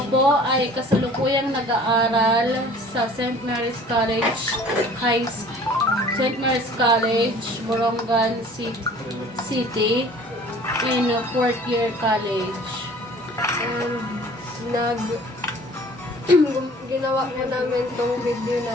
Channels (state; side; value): normal; both; correlation 0.49